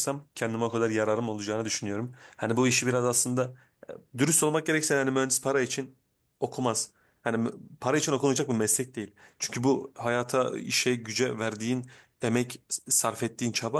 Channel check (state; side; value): identical; both; correlation 1.00